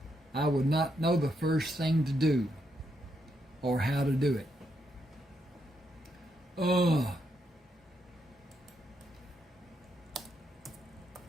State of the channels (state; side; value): normal; both; correlation 0.79